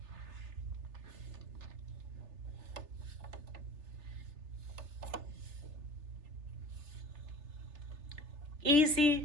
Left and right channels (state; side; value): late; left; 3.3 ms